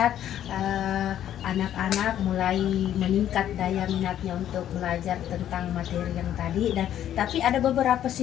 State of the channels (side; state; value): right; quieter; 11.1 dB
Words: anak-anak mulai meningkat daya minatnya untuk belajar tentang materi yang tadi, dan tapi ada beberapa